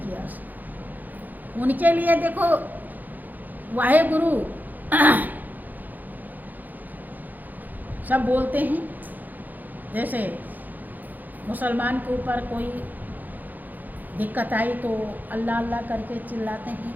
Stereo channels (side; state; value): left; late; 0.084 ms